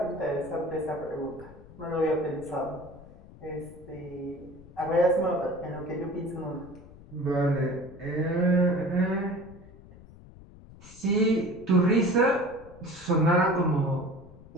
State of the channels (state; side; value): noise; left; rumble, 20 dB below the sound